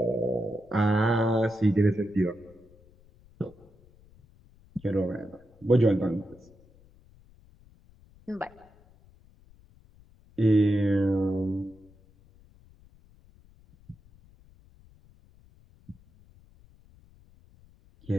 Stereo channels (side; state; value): left; noise; rumble, 27 dB below the sound